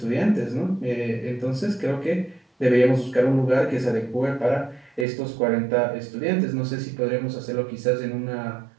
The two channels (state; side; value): drops out; left; at 5.1 s